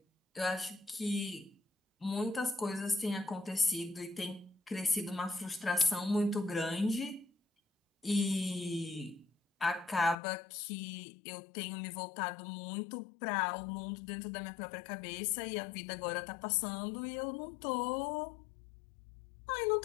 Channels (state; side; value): drops out; right; at 10.2 s